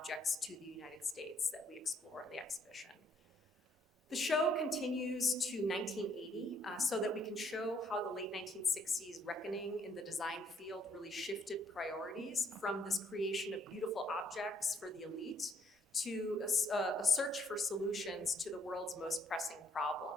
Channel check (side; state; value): both; normal; correlation 0.67